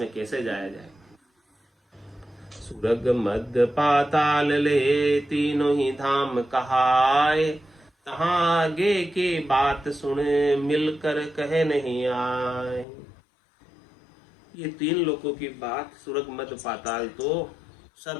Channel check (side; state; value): right; drops out; at 12.9 s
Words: कैसे जाया जाए। सुरग मध्य पाताल ले तीनों ही धाम कहाए, तहां आगे की बात सुन मिलकर कहे नहीं आए। ये तीन लोगों की बात सुरग मध्य पाताल तो